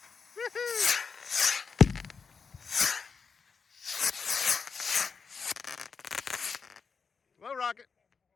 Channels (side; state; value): right; quieter; 5.5 dB